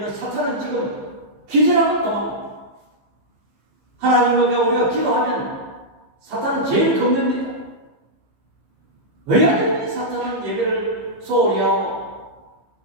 사탄은 지금 기절하고 도망갑니다. 하나님과 우리가 기도하면 사탄은 제일 겁냅니다. 왜 사탄은 예배를 소홀히 하고,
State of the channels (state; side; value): late; left; 15 ms